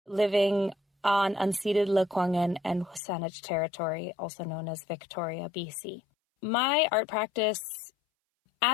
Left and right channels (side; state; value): right; drops out; at 3.0 s